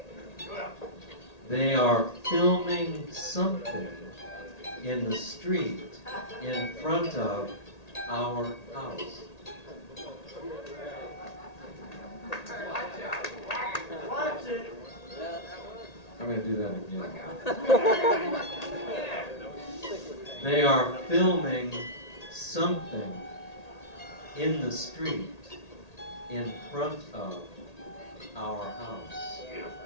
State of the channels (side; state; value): right; late; 1.8 ms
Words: They are filming something in the street in front of our house. Watch it. I'm going to do that again. They are filming something in the street in front of our house.